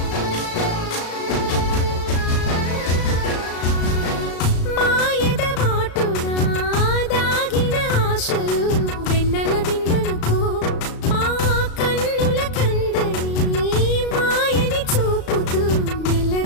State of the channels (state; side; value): late; right; 35 ms